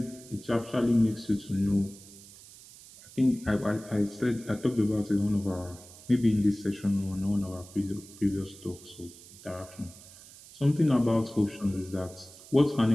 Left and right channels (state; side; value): noise; right; hiss, 20 dB below the sound